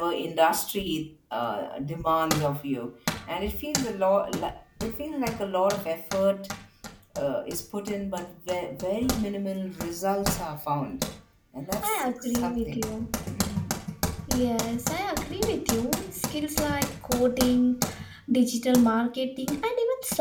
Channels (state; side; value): identical; both; correlation 1.00